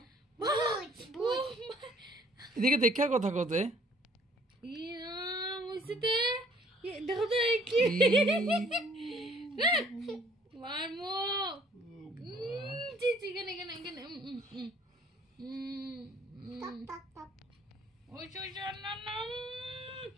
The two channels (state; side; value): normal; both; correlation 0.58